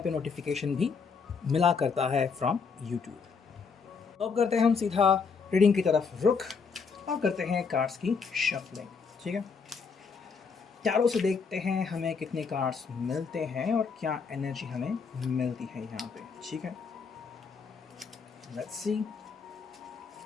नोटिफिकेशन भी मिला करता है फ्रॉम यूट्यूब। तो अब करते हैं हम सीधा रीडिंग की तरफ रुख और करते हैं कार्ड्स की शफलिंग। ठीक है, चारों से देखते हैं हमें कितने कार्ड्स मिलते हैं और क्या एनर्जी हमें मिलती है यहाँ पे। ठीक है, लेट्स सी।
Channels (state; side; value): quieter; right; 5.4 dB